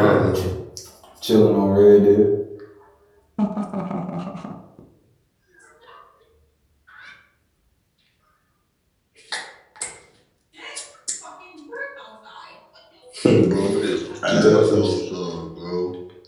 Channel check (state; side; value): identical; both; correlation 1.00